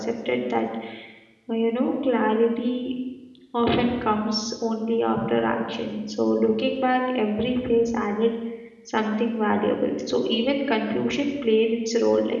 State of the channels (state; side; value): identical; both; correlation 1.00